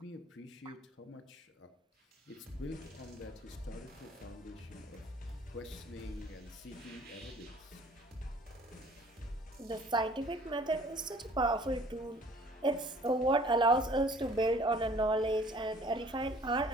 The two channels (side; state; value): both; normal; correlation 0.54